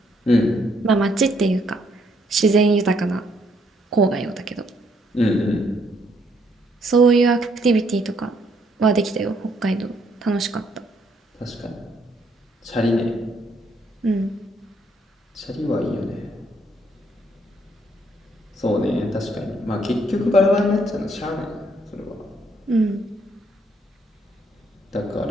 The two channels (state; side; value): normal; both; correlation 0.70